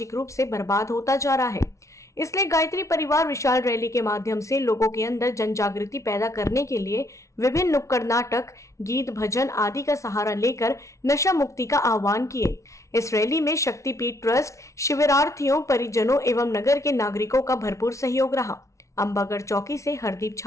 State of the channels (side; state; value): right; late; 0.14 ms